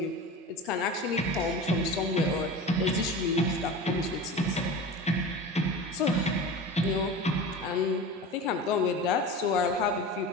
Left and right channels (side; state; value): both; normal; correlation 0.32